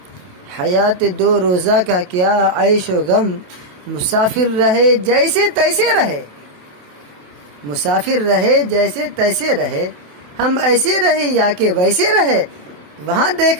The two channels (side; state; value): left; late; 28 ms